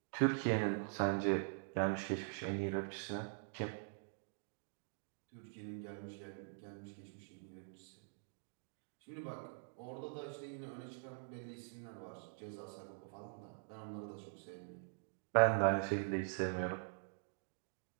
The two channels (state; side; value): silent; left; digital silence